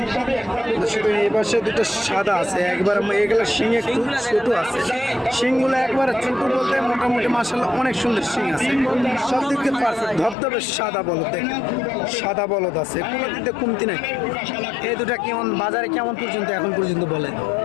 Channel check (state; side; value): drops out; right; at 10.4 s